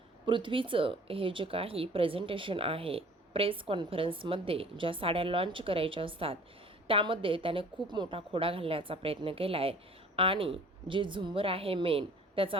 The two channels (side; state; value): both; normal; correlation 0.49